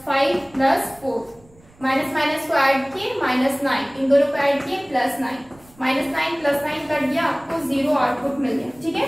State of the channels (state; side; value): noise; right; rumble, 27 dB below the sound